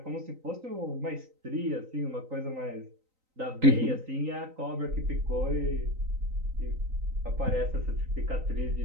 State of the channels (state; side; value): late; left; 3.9 ms